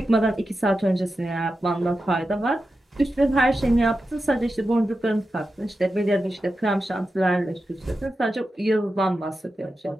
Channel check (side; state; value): both; normal; correlation 0.91